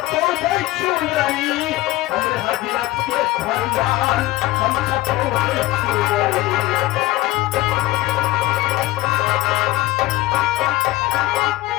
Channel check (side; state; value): right; quieter; 17.4 dB